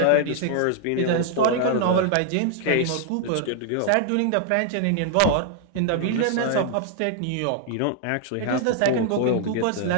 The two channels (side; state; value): both; different; correlation 0.00